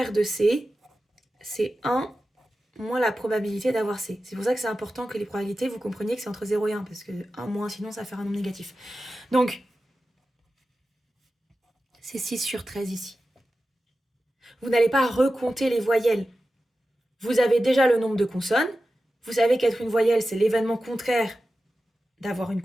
de C, c'est 1 moins la probabilité d'avoir C. C'est pour ça que c'est important que les probabilités, vous compreniez que c'est entre 0 et 1, parce que 1 moins, sinon ça va faire un nombre négatif. Donc, c'est 6 sur 13 ici. Vous n'allez pas recompter les voyelles. Vous avez déjà le nombre de consonnes. Vous savez qu'être une voyelle, c'est l'événement contraire d'avoir une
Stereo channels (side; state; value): both; normal; correlation 0.93